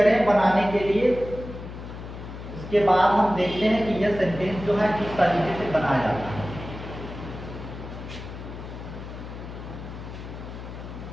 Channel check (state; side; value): noise; left; hum, 11 dB below the sound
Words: बनाने के लिए। उसके बाद हम देखते हैं कि यह सेंटेंस जो है किस तरीके से बनाया जाता है।